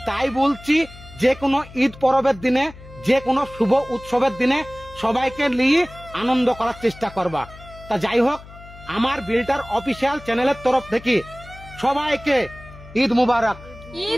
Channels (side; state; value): left; noise; hum, 18 dB below the sound